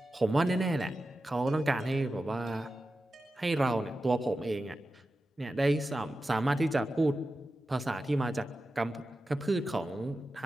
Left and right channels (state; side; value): normal; both; correlation 0.92